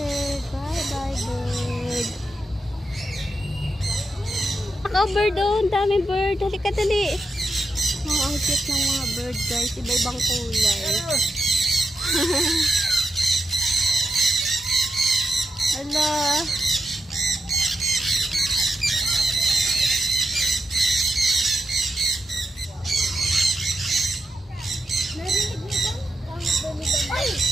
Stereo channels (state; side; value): normal; both; correlation 0.85